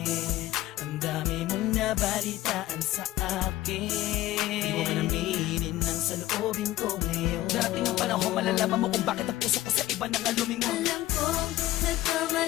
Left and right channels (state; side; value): quieter; right; 15.5 dB